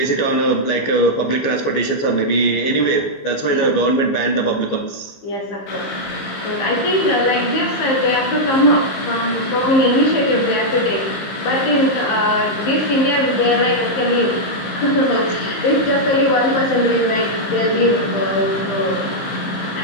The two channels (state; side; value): late; right; 15 ms